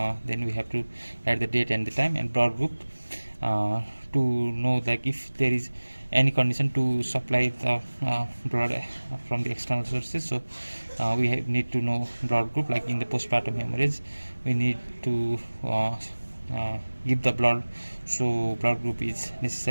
then we have to add the date and the time. And blood group, to know like if there is any condition to supply the blood from the external sources, so we need to know blood group. Like in the postpartum hemorrhage, we need to give the blood, so blood group is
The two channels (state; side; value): inverted; both; correlation -1.00